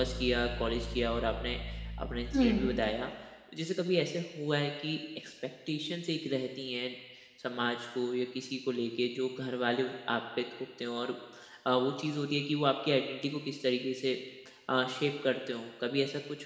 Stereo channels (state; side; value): identical; both; correlation 1.00